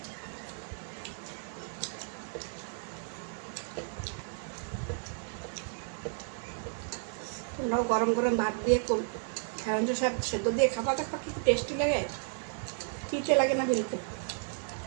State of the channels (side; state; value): left; silent; 56 dB below the other